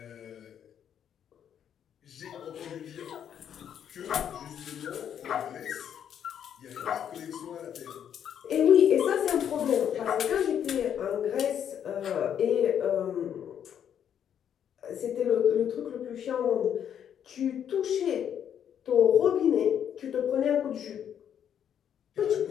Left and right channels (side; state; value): right; quieter; 9.1 dB